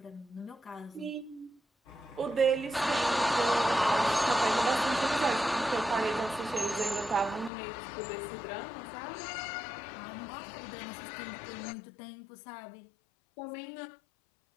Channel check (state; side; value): drops out; right; at 7.5 s